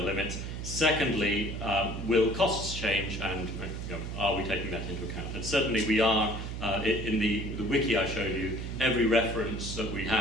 limits? Secondly, will costs change, and are we taking that into account? And certainly we are. In the wiki I showed you, every reference that we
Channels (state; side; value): noise; right; hum, 6 dB below the sound